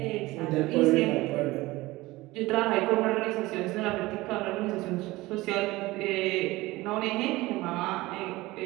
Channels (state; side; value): quieter; left; 19.7 dB